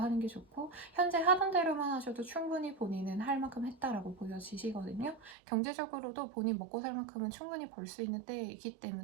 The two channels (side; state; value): left; drops out; at 5.4 s